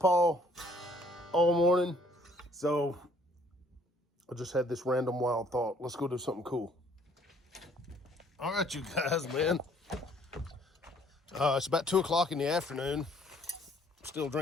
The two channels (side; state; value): both; normal; correlation 0.61